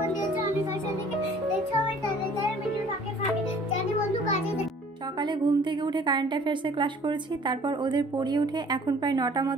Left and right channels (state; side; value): normal; both; correlation 0.54